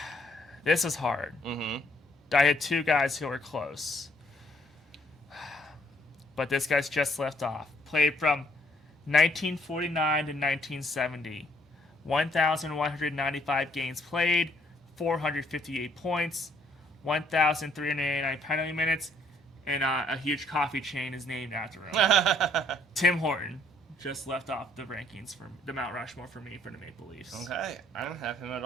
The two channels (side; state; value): both; normal; correlation 0.66